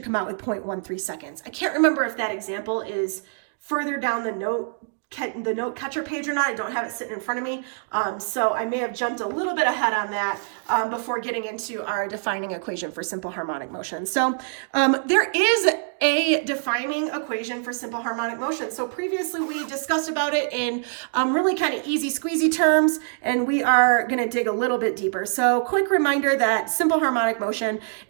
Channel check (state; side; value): silent; left; digital silence